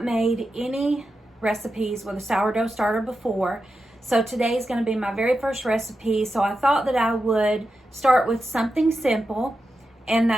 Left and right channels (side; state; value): both; normal; correlation 0.89